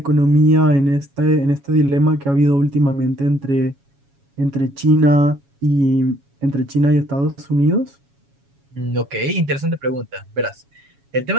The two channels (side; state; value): left; late; 7.2 ms